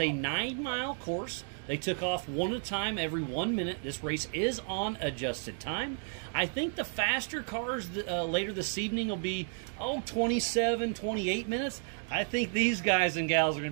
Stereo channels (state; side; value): silent; left; 56 dB below the other